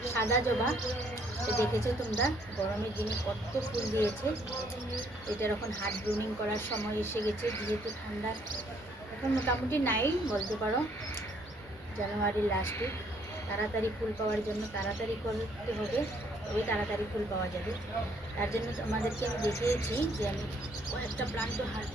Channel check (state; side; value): normal; both; correlation 0.66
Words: সাদা জবা। এটা দেখেছো তোমরা, গরমের দিনে কত ফুল দিয়েছে। এটার এখন হার্ট ব্লুমিং করার সময় এসে গেছে, যেহেতু ঠান্ডা এখন মোটামুটি নাই বলতে পারো, জানুয়ারির লাস্ট উইক। তাড়াতাড়ি ফুল পাওয়ার জন্য তাড়াতাড়ি করতে হবে, তবে তাড়াতাড়ি ফুল পাওয়া যাবে। তার জন্য তোমাদেরকে আমি দেখিয়েছি যে আমি কয়েকটা প্লান্টও হার্ট